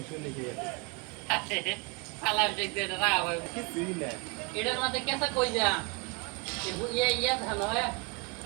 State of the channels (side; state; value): left; quieter; 30.7 dB